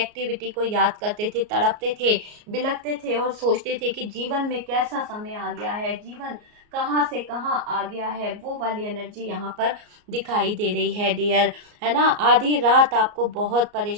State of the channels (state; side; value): late; left; 33 ms